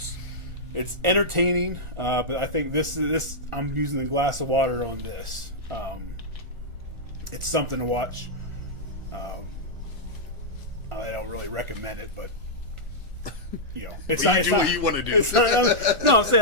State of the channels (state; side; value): late; left; 1.4 ms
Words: It's entertaining, but I think this I'm using the glass of water on this. It's something to watch. I don't really recommend it, but it's not. It's not what you want to do. It's not. No, I'm saying